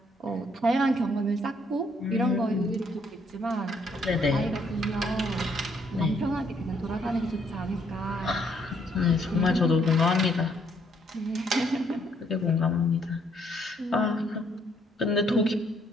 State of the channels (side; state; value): both; normal; correlation 0.69